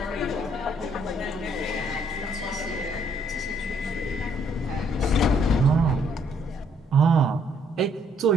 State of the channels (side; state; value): both; normal; correlation 0.67